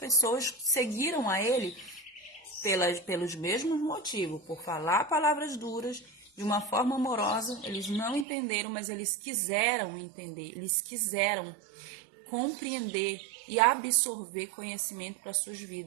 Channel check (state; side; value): drops out; left; at 8.2 s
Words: seguiram a ele pelos mesmos motivos, por falar palavras duras de uma forma amorosa. Eles não entenderam, mas eles quiseram entender, eles quiseram compreender e absorver conhecimento para suas